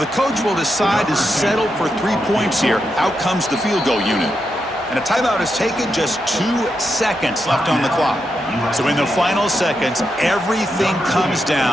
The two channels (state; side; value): normal; both; correlation 0.85